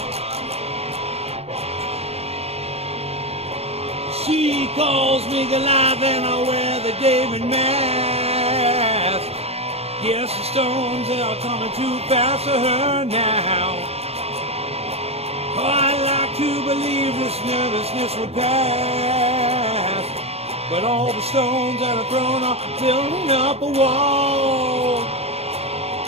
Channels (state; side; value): late; left; 0.30 ms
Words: She calls me Goliath and I wear the David mask. Yes, the stones are coming too fast for her now. Oh, I like to believe this nervousness would pass, but all the stones that are thrown are building up a wall.